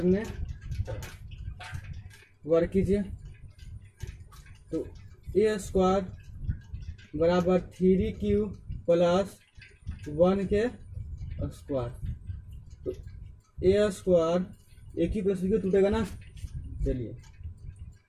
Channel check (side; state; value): both; identical; correlation 1.00